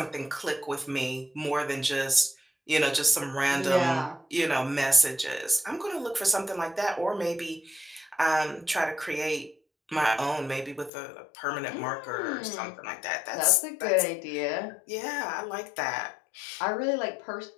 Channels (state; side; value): drops out; right; at 10.9 s